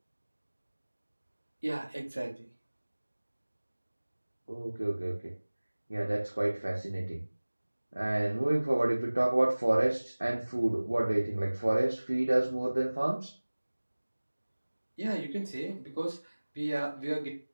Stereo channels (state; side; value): inverted; both; correlation -1.00